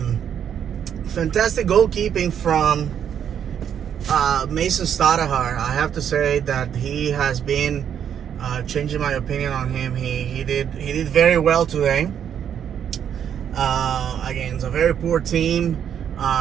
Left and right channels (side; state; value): left; quieter; 8.8 dB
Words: fantastic goalkeeping from Mason Stadahar. I have to say that he has been changing my opinion on him. He did very well today. Again, it's a very poor team.